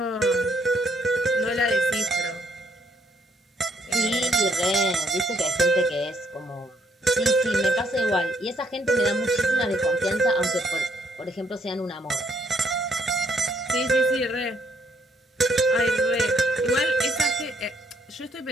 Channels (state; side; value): normal; both; correlation 0.69